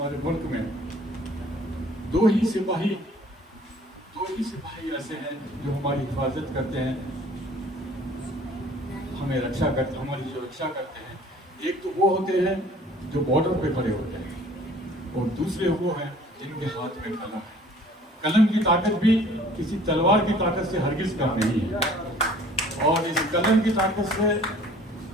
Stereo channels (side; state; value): both; normal; correlation 0.52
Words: मुल्क में दो ही सिपाही ऐसे हैं जो हमारी हिफाजत करते हैं, हमें रक्षा करते, हमारी जो रक्षा करते हैं। एक तो वो होते हैं जो बॉर्डर पे खड़े होते हैं और दूसरे वो हैं जिनके हाथ में कलम है। कलम की ताकत भी किसी तलवार की ताकत से हरगिज कम नहीं है और इस कलम की ताकत से